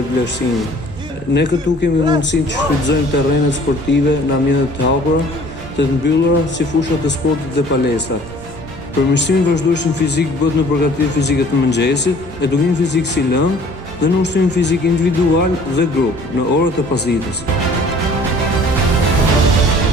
Ne këtu kemi mundësinë që shfrytëzojmë terrenet sportive në ambiente të hapura, të mbyllura si fushat e sportit dhe palestrat. Përmirësimi vazhdueshëm fizik bëhet në përgatitje fizike të mëngjesit, edukim fizik si lëng dhe në ushtrim fizik individual dhe grup në orët e pasdites.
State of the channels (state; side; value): normal; both; correlation 0.52